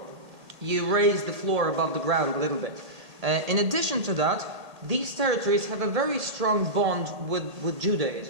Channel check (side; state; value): left; late; 1.8 ms